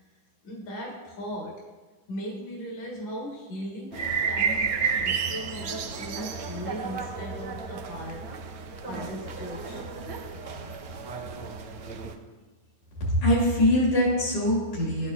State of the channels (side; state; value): right; late; 9.3 ms